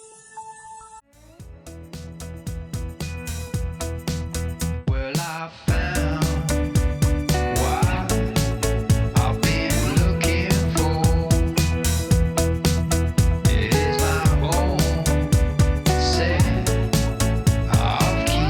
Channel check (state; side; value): identical; both; correlation 1.00